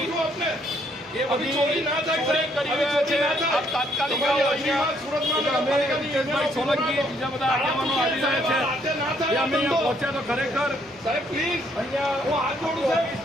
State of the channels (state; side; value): normal; both; correlation 0.69